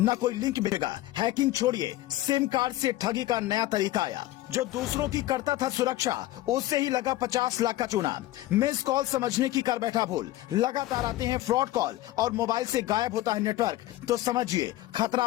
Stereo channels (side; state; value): right; quieter; 16.0 dB